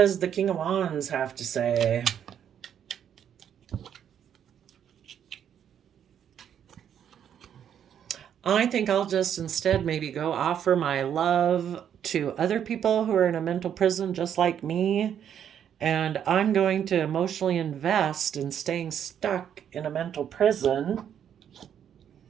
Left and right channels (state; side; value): quieter; left; 9.1 dB